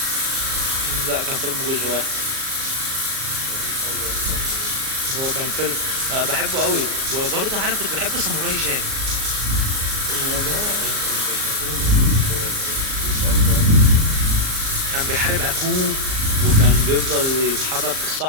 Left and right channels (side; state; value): left; late; 38 ms